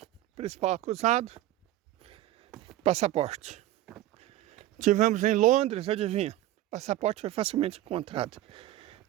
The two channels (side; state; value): left; quieter; 14.5 dB